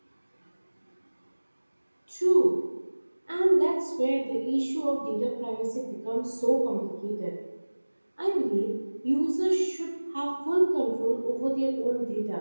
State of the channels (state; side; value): inverted; both; correlation -1.00